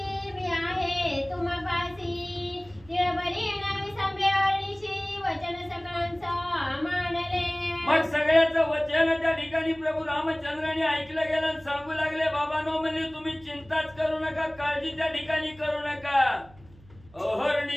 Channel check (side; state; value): right; noise; hum, 24 dB below the sound